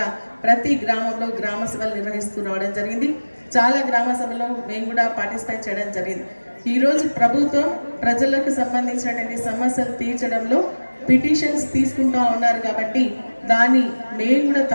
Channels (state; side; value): inverted; both; correlation -1.00